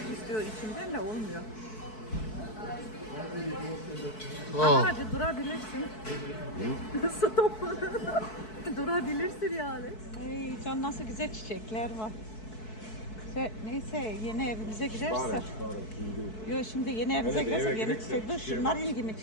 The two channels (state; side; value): late; right; 4.6 ms